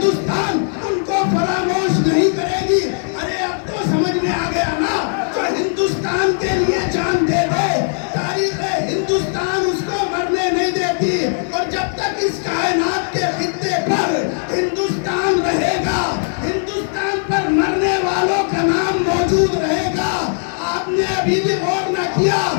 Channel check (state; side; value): silent; right; 67 dB below the other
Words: ان کو فراموش نہیں کرے گی۔ ارے اب تو سمجھ میں آ گیا نا، جو ہندوستان کے لیے جان دے دے تاریخ ہندوستان اس کو مرنے نہیں دیتی، اور جب تک اس کائنات کے خطے پر ہندوستان رہے گا، ہندوستان پر مرنے والوں کا نام موجود رہے گا۔ آپ نے ابھی بھی غور نہ کیا